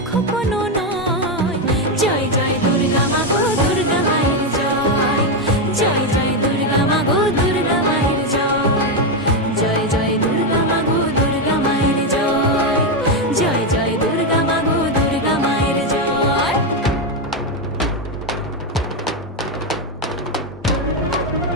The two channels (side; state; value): both; normal; correlation 0.07